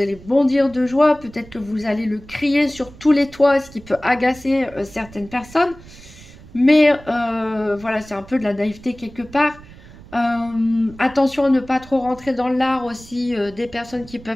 bondir de joie, peut-être que vous allez le crier sur tous les toits, ce qui peut agacer certaines personnes. Mais voilà, c'est un peu de la naïveté quelque part. Attention à ne pas trop rentrer dans l'art aussi des personnes qui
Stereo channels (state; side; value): noise; right; rumble, 20 dB below the sound